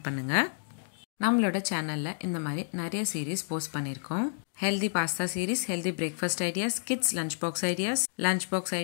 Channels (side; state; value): right; silent; digital silence